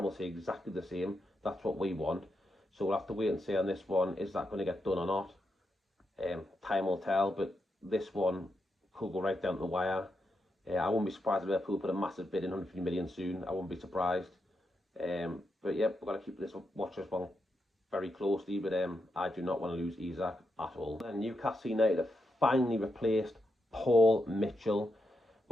will say exactly the same. That's what we want. So we'll have to wait and see on this one, is that going to get done or not? Time will tell, but this one could go right down to the wire. I wouldn't be surprised if Liverpool put a massive bid in, 150 million soon. I wouldn't be surprised. But yeah, we've got to keep watch this one very closely, but I do not want to lose Isak at all. And Newcastle United have finally replaced Paul Mitchell.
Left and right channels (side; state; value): both; normal; correlation 0.84